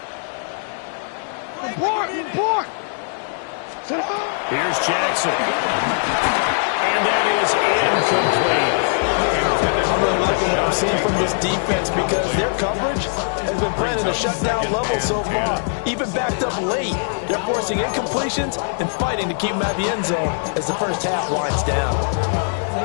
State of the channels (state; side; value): silent; right; digital silence